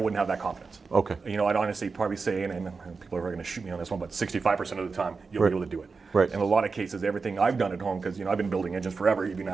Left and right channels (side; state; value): left; quieter; 4.6 dB